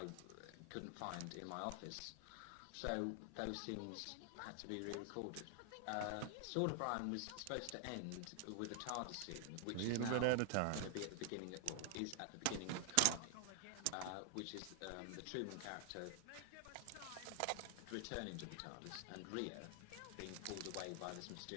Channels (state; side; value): different; both; correlation 0.00